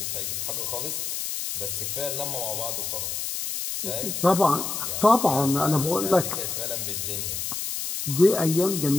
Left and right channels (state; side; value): noise; left; hiss, 3 dB below the sound